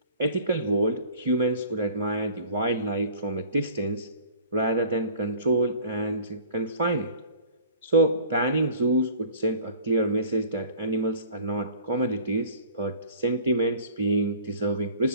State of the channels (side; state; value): both; inverted; correlation -0.47